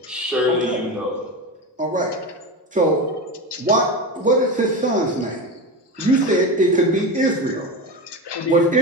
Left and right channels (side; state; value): both; normal; correlation 0.21